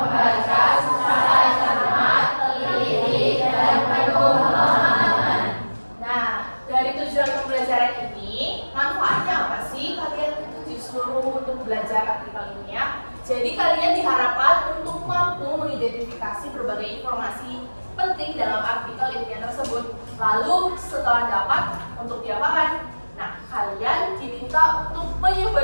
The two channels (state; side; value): inverted; both; correlation -1.00